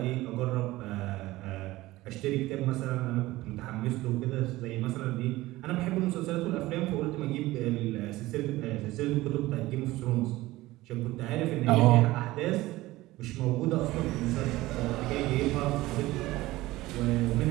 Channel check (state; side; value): quieter; left; 18.1 dB